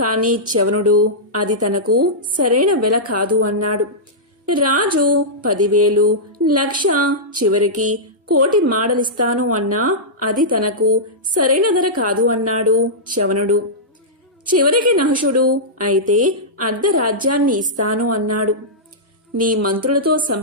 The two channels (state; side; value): normal; both; correlation -0.13